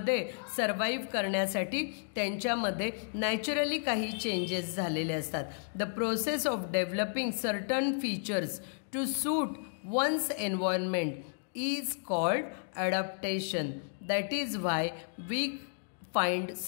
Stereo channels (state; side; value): silent; right; digital silence